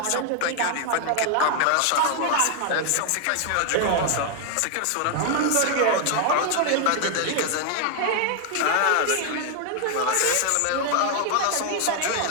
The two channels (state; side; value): different; both; correlation 0.00